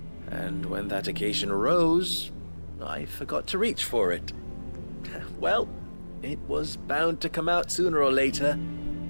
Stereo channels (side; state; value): both; inverted; correlation -1.00